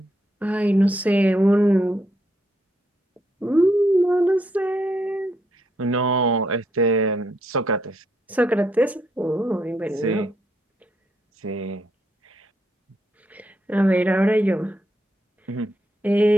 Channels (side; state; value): both; normal; correlation 0.76